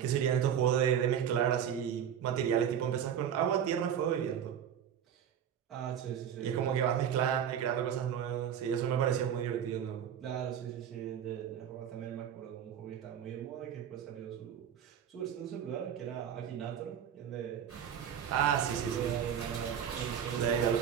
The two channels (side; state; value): left; quieter; 9.0 dB